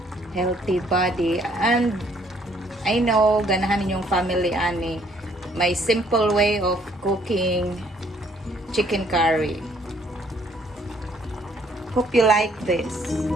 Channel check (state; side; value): normal; both; correlation 0.64